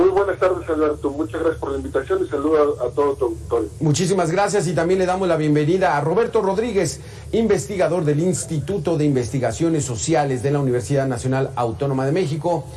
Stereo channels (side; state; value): both; identical; correlation 1.00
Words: buenas tardes, Alberto. Muchas gracias por la invitación y saludo a todo tu auditorio. Muchísimas gracias y también le damos la bienvenida a Roberto Rodríguez, investigador del Instituto de Investigaciones Sociales de la Universidad Nacional Autónoma de México.